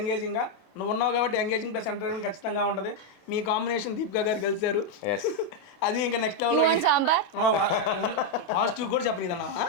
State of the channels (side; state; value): right; late; 27 ms